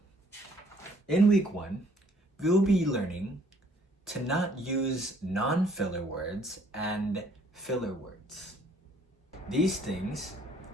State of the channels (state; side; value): normal; both; correlation 0.62